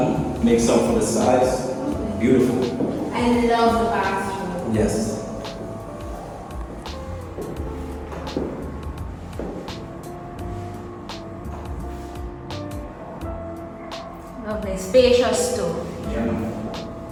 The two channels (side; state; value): both; identical; correlation 1.00